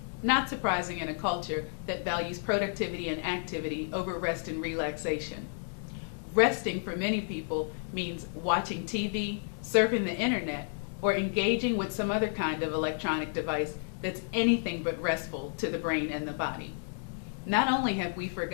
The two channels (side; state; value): right; silent; digital silence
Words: not surprising in a culture that values productivity and activity over rest and relaxation. Resting for many people means watching TV, surfing the internet, or engaging with some other kind of electronic device that's anything but restful to the brain and the body. Not only have we